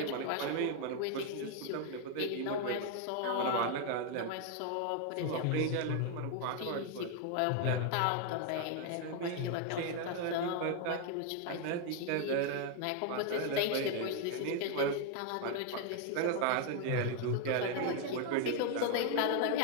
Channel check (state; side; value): different; both; correlation 0.00